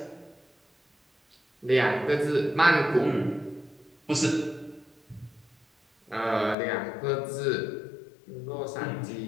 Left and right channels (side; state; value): right; drops out; at 6.6 s